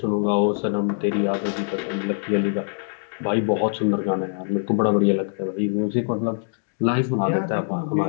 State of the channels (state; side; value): silent; right; digital silence